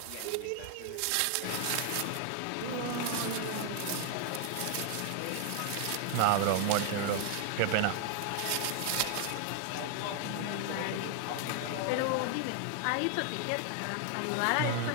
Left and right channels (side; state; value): both; different; correlation 0.00